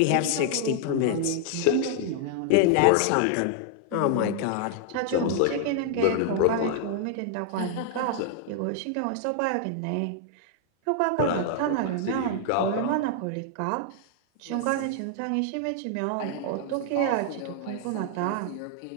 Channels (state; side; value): different; both; correlation -0.01